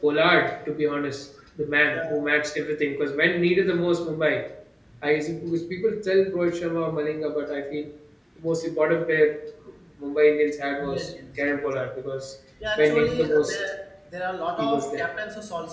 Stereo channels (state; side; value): identical; both; correlation 1.00